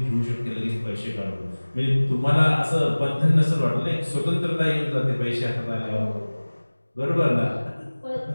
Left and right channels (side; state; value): both; inverted; correlation -1.00